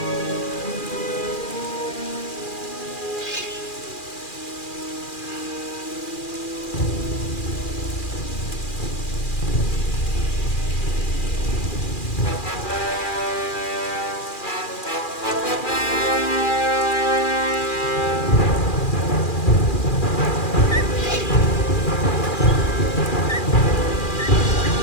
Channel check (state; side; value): late; right; 2.4 ms